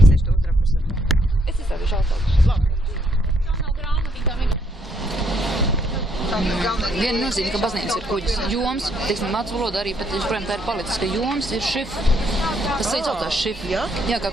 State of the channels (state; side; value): normal; both; correlation 0.71